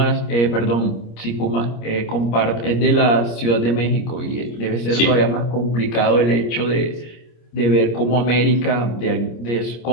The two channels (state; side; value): late; right; 25 ms